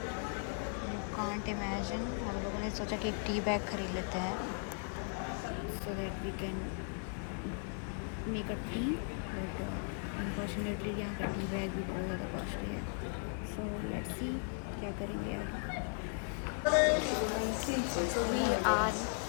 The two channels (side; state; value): right; silent; 53 dB below the other